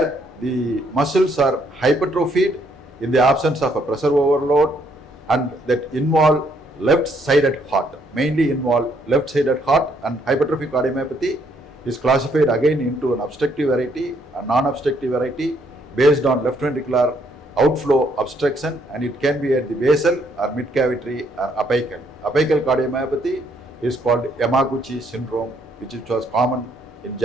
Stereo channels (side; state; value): both; normal; correlation 0.70